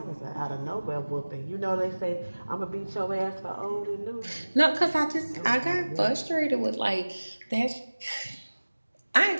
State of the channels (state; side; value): inverted; both; correlation -1.00